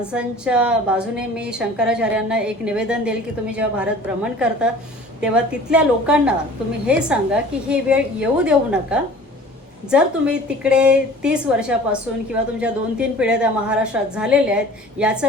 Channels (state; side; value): normal; both; correlation 0.46